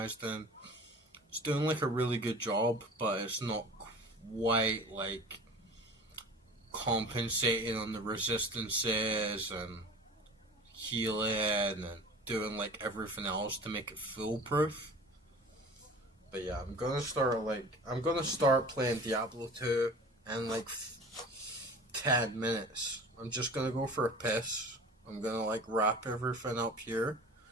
in. It's doing like a really good job, but it's not quite like compensating on the resistances and healing and doing like everything else to make it foolproof. But yeah, I'm gonna start playing Diablo 2 in like 10 minutes. I'm just gonna go for a piss. I'm gonna like wrap everything up here.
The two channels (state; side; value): normal; both; correlation 0.41